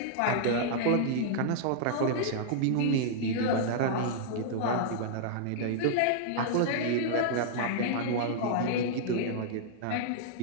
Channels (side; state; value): both; different; correlation -0.02